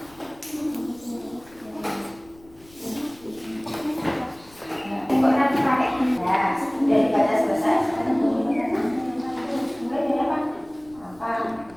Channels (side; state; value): left; noise; rumble, 26 dB below the sound